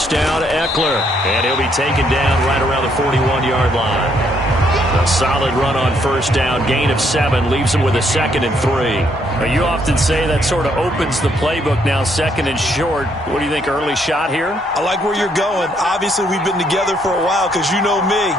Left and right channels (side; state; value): both; normal; correlation 0.71